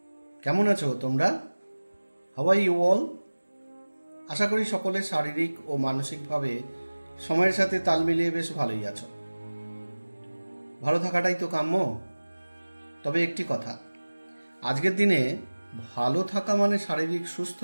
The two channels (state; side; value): inverted; both; correlation -1.00